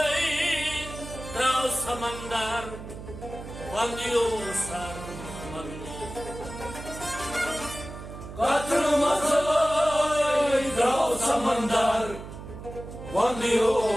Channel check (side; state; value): right; noise; hum, 12 dB below the sound